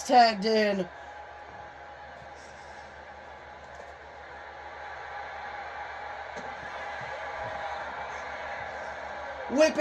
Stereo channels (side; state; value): both; identical; correlation 1.00